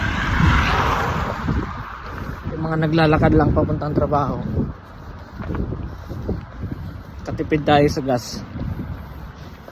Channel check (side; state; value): both; identical; correlation 1.00